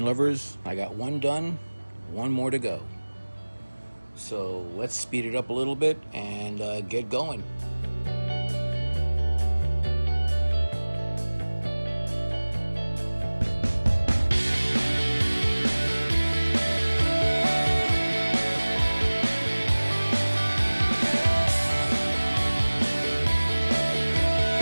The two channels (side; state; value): both; inverted; correlation -1.00